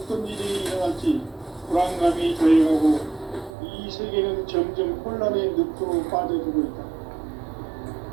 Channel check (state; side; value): drops out; left; at 3.5 s